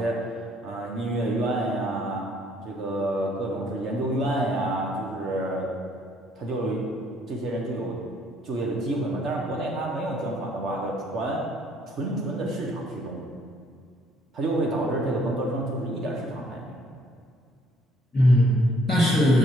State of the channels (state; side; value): normal; both; correlation 0.64